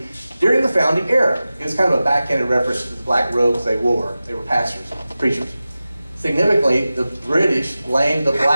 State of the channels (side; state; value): both; inverted; correlation -0.95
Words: during the founding era. It was kind of a backhanded reference to the black robes they wore. They were pastors, preachers. Significantly, the British blamed the